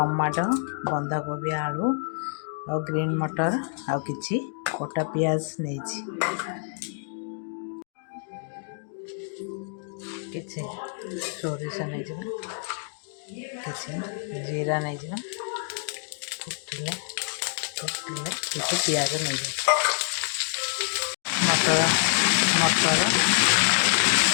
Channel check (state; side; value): silent; right; 60 dB below the other